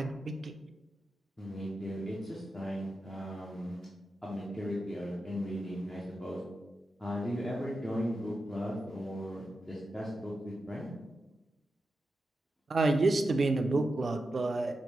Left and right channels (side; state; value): both; normal; correlation 0.90